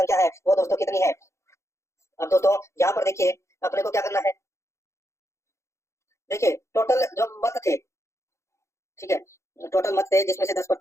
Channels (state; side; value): late; right; 0.14 ms